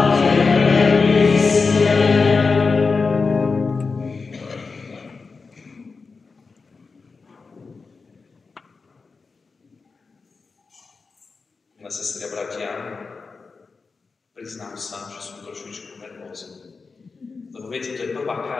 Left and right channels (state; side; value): quieter; right; 4.5 dB